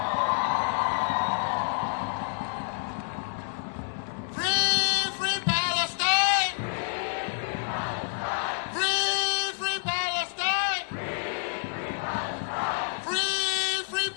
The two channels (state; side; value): silent; right; 59 dB below the other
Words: Free, free Palestine! Free, free Palestine! Free, free